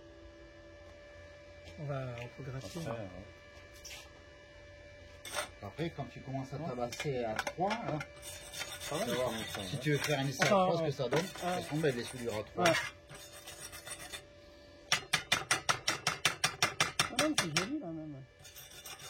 on peut gratter. Après, Après, quand tu commences à tabasser à 3, hein, ça va, voir. ça va. Si tu veux faire un essai à Enfin, 3, ce que ça donne, de toute façon, ben, les soudures à 3. Ouais. Ah non, c'est joli là même.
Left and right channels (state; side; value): identical; both; correlation 1.00